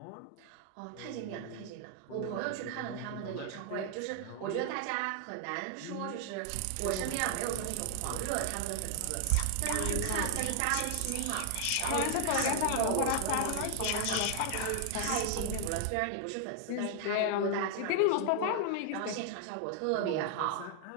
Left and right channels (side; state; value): both; different; correlation 0.00